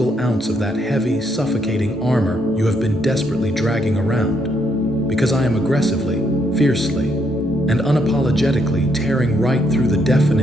ounce of that heavy, suffocating armor you have been desperately dragging around. Because I am aggressively, fiercely, and unapologetically tearing right through the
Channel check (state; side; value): normal; both; correlation 0.74